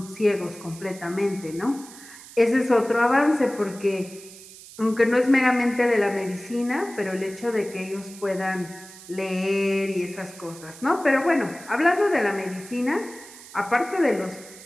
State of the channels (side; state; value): right; noise; hiss, 18 dB below the sound